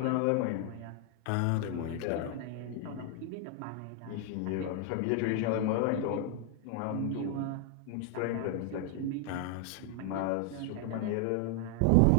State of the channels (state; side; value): different; both; correlation 0.00